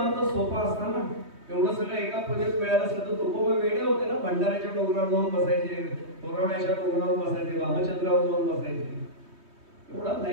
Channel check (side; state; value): left; late; 3.2 ms